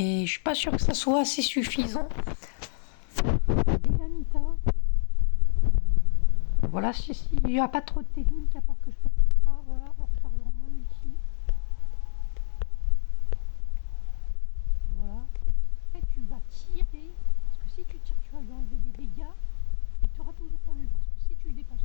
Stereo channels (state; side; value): silent; right; 61 dB below the other